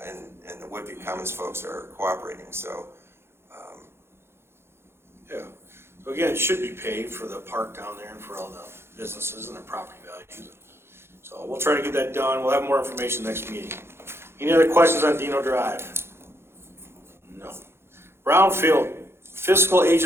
and the Woodview Commons folks are cooperating. So Yeah. So again, it should be paid for the park down there and for all the businesses and their property values. So we'll try to get that done. We'll have more information next meeting. Any other questions on Dino Drive? No. Brownfield fiscal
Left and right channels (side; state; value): left; late; 0.12 ms